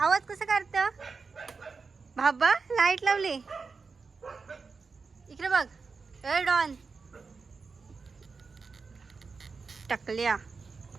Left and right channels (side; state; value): left; quieter; 4.7 dB